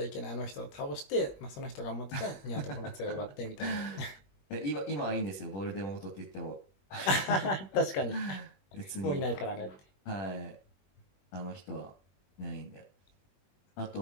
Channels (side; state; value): right; late; 21 ms